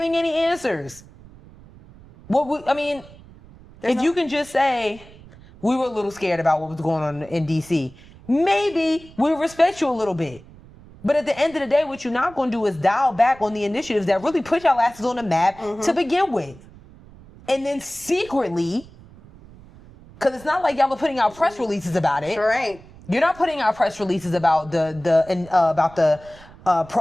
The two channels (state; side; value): noise; right; rumble, 22 dB below the sound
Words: any answers. If you can just say, we were a little scared about what was going on in D.C., maybe we'll respect you a little bit. But at the end of the day, what you're not going to do is dial back on the initiatives that really put y'all asses on the map to begin with. And then secretly, because it's not like y'all are putting out press releases about it. Sure ain't. You're not putting out press releases about the